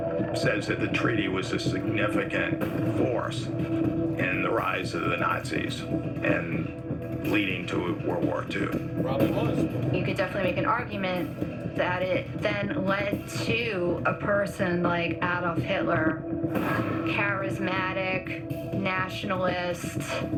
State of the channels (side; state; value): both; identical; correlation 1.00